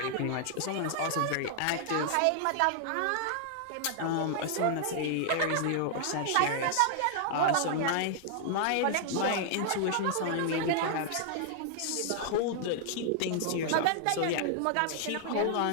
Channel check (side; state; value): both; different; correlation -0.01